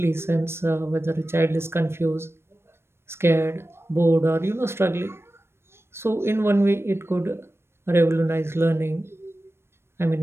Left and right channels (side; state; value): left; late; 0.12 ms